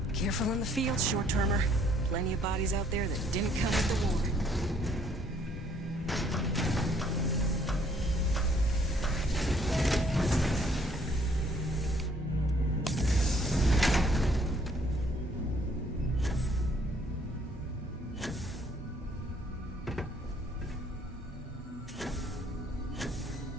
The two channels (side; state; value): both; normal; correlation 0.63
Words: Careful in the field, short-termer. Plenty of bodies out there that didn't come with the war.